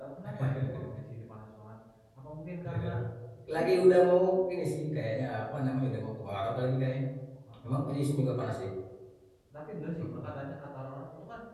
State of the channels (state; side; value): identical; both; correlation 1.00